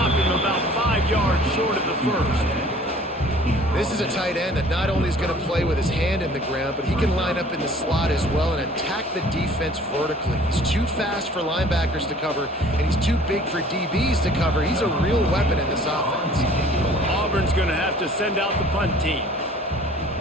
him about 5 yards short of the first. This is a tight end that not only is going to play with his hand in the ground, but he can line up in the slot as well and attack the defense vertically. He's too fast for linebackers to cover, and he's too big for DBs to cover. He's a real weapon in this offense. Auburn's going to have to send out the punt team.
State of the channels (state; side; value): normal; both; correlation 0.52